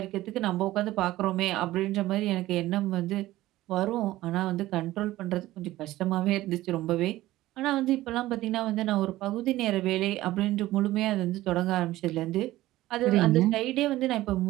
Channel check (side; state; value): left; quieter; 16.2 dB